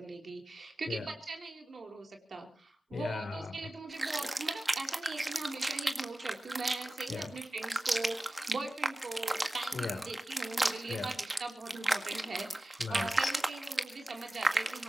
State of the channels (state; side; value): normal; both; correlation 0.96